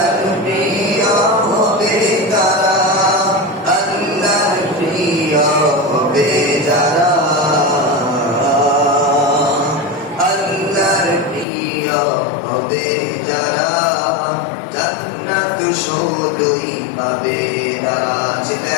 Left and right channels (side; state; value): right; drops out; at 11.5 s